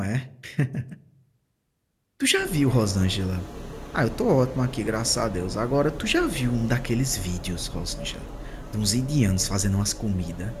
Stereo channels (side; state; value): both; identical; correlation 1.00